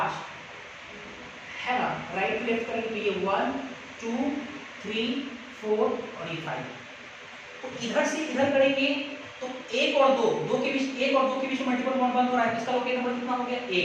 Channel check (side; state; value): both; identical; correlation 1.00